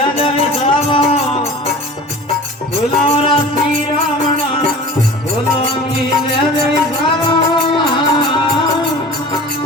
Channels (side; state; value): both; normal; correlation 0.40